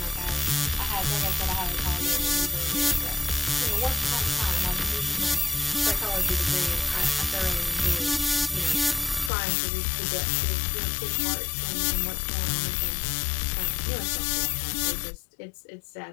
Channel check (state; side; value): drops out; right; at 9.3 s